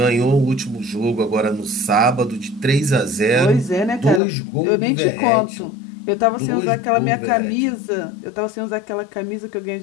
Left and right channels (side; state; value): right; drops out; at 4.2 s